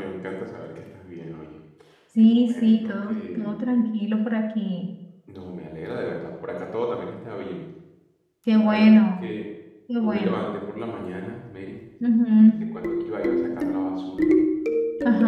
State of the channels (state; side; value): identical; both; correlation 1.00